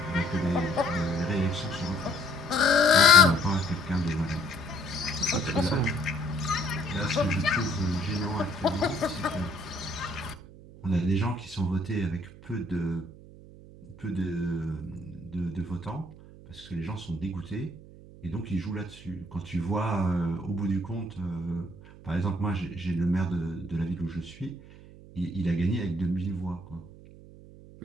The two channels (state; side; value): noise; right; hum, 19 dB below the sound